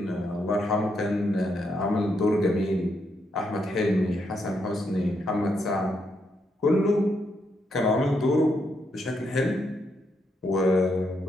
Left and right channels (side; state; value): both; normal; correlation 0.79